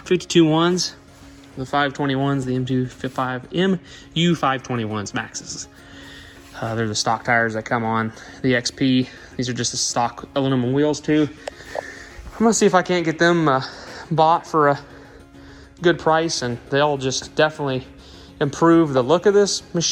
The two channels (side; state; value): both; identical; correlation 1.00